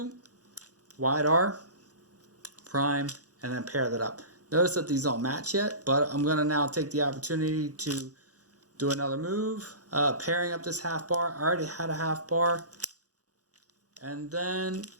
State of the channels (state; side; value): late; left; 0.67 ms